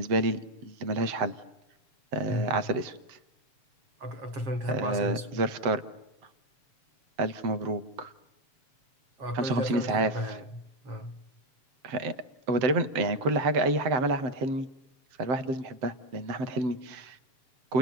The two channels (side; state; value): left; late; 7.8 ms